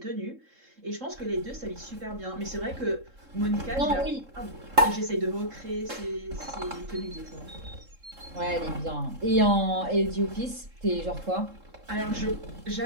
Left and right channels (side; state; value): left; late; 3.7 ms